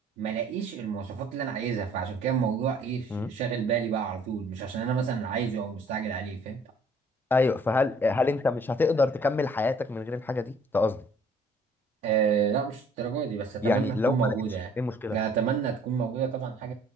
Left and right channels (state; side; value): normal; both; correlation 0.58